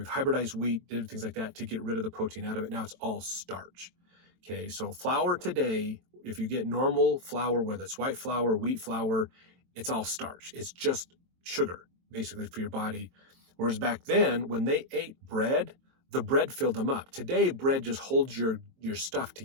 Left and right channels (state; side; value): late; left; 22 ms